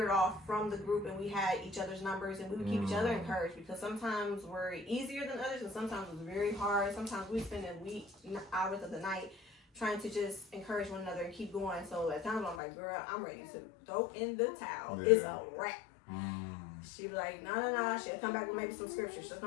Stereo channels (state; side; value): drops out; right; at 12.6 s